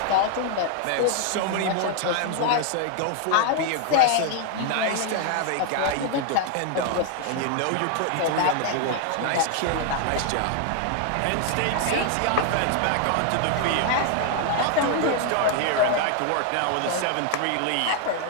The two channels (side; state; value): both; different; correlation 0.00